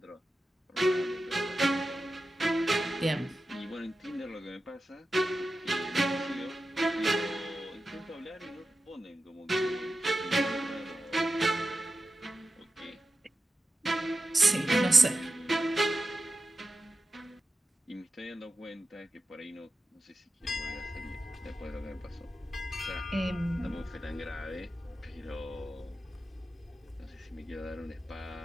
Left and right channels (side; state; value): both; normal; correlation 0.91